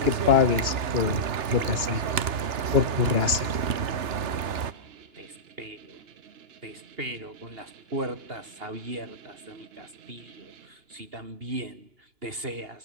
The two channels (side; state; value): left; late; 2.9 ms